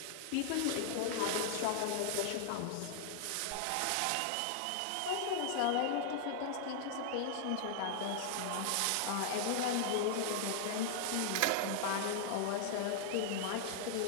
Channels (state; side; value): different; both; correlation 0.00